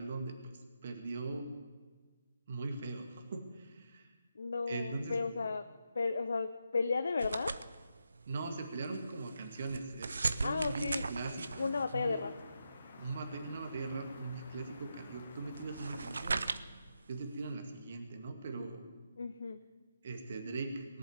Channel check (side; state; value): both; inverted; correlation -0.84